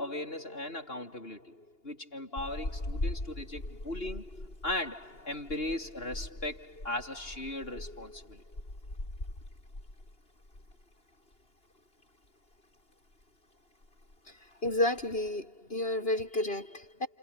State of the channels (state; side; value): late; right; 2.8 ms